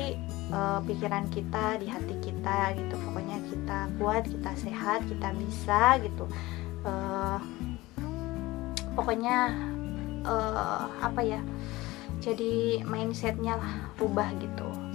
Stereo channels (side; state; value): right; quieter; 19.5 dB